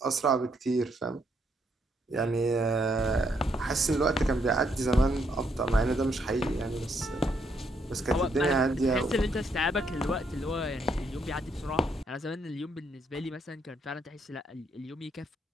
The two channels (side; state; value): both; normal; correlation 0.74